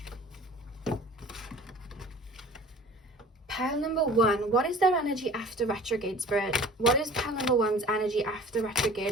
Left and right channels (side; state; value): both; normal; correlation 0.45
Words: Pile number 1. What is their energy after retrograde, spirit? What is pile number 1's energy after